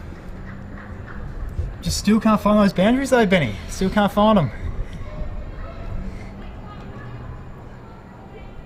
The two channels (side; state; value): both; identical; correlation 1.00